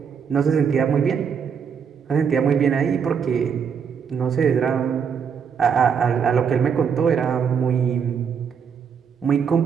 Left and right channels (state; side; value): quieter; left; 6.8 dB